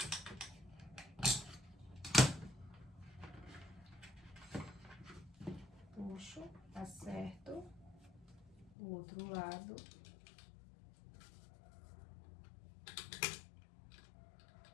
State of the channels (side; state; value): right; drops out; at 8.7 s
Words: Puxo, acerto o outro lado.